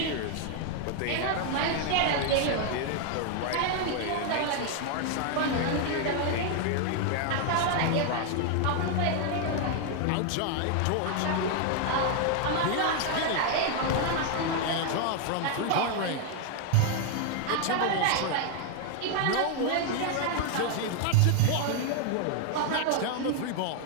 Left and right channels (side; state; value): both; different; correlation 0.00